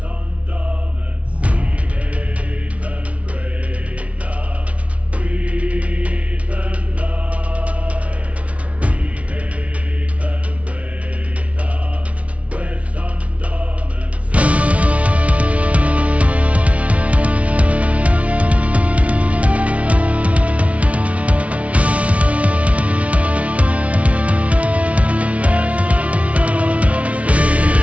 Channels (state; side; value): late; left; 0.065 ms